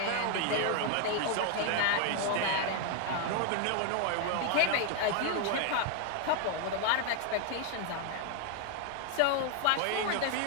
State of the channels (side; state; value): both; different; correlation 0.00